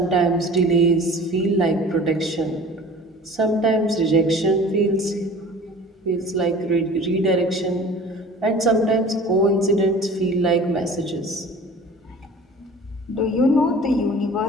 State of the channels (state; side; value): normal; both; correlation 0.43